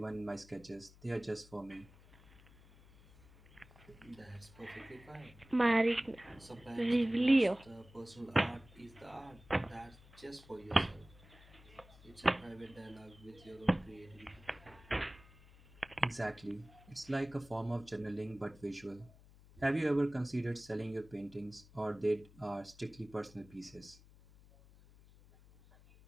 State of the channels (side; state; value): left; noise; hum, 23 dB below the sound